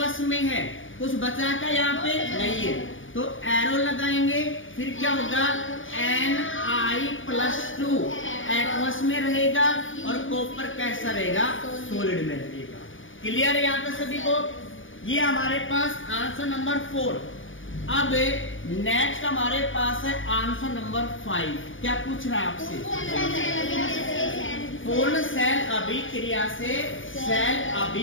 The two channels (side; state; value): right; late; 0.57 ms